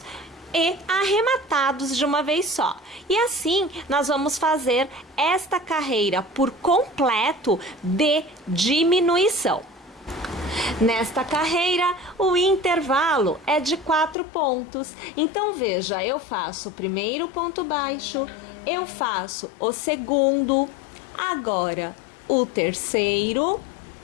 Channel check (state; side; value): drops out; right; at 14.2 s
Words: e arrematados de uma vez só. E assim, nós vamos fazer esta carreira por completo de diminuição. Nesta carreira, o intervalo é de 4 pontos. Então, veja, eu faço o primeiro ponto baixo, eu faço o segundo, agora o terceiro